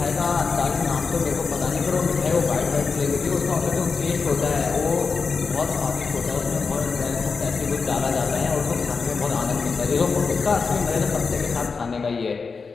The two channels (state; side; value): quieter; right; 4.9 dB